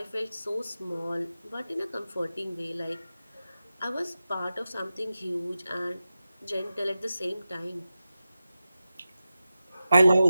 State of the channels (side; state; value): both; inverted; correlation -0.93